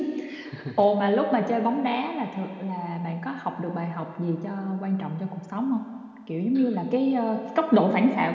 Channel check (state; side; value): identical; both; correlation 1.00